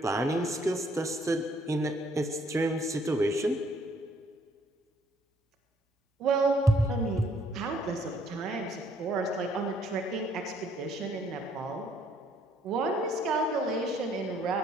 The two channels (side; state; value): both; normal; correlation 0.65